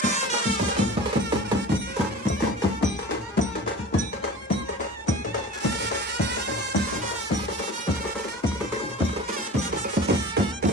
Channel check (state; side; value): normal; both; correlation 0.37